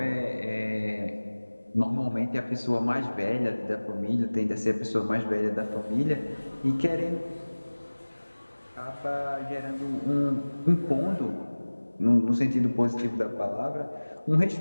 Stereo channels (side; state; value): both; inverted; correlation -1.00